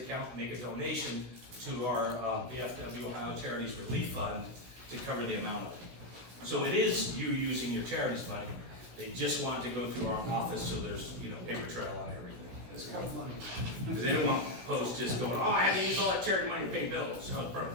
and make a donation to our VFW Ohio Charities Relief Fund to cover the amount of it. So it is you using your charities money. They just want to go through our office so there's, you know, paper trail on everything. It's kind of funny. Because they don't want posts just going, oh, I had to use all that charity money to pay bills. Oh, bro,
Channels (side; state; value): left; late; 16 ms